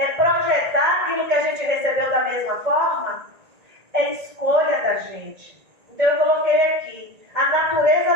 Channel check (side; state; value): left; late; 1.8 ms